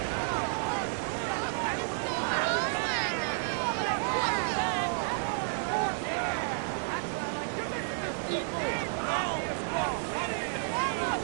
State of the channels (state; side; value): silent; left; 57 dB below the other